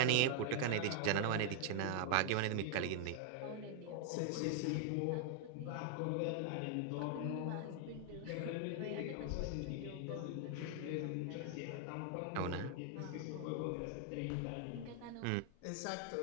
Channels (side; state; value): both; different; correlation 0.00